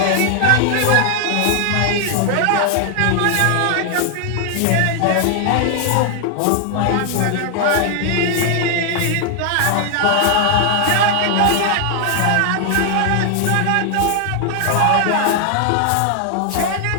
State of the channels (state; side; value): different; both; correlation 0.00